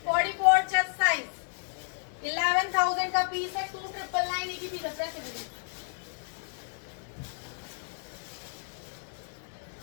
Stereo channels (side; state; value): right; silent; 57 dB below the other